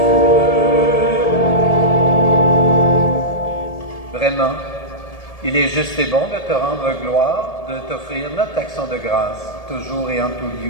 Vraiment, il est juste et bon de te rendre gloire, de t'offrir notre action de grâce, toujours et en tout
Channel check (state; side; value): late; right; 1.7 ms